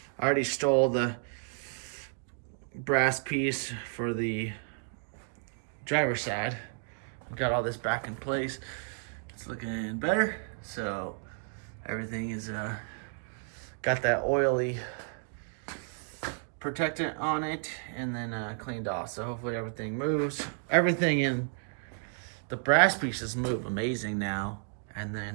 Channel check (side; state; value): left; silent; 56 dB below the other